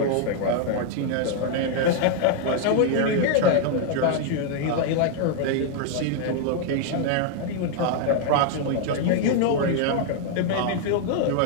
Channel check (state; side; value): different; both; correlation 0.00